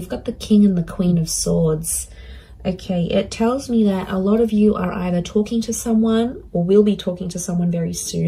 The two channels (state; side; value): identical; both; correlation 1.00